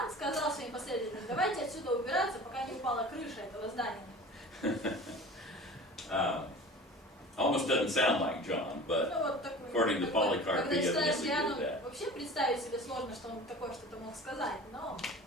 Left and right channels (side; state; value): both; normal; correlation 0.40